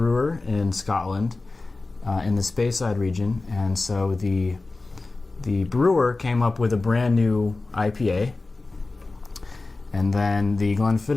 in Scotland, in the Speyside region, and so the brewer came up with a brand new IPA, and then the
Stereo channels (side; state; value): right; quieter; 3.4 dB